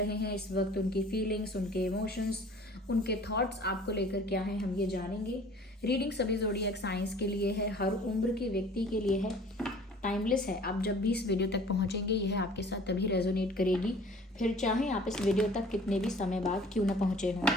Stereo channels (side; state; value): both; normal; correlation 0.49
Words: हैं, इस वक्त उनकी फीलिंग्स, उनके इमोशंस, उनके थॉट्स आपको लेकर क्या हैं, हम ये जानेंगे। रीडिंग सभी ज़ोडिएक साइंस के लिए है, हर उम्र के व्यक्ति के लिए है, टाइमलेस है। आप जब भी इस वीडियो तक पहुंचेंगे यह आपके साथ तभी रेजोनेट करेगी, फिर चाहे आप इस वीडियो तक कितने भी समय बाद क्यों ना पहुंचे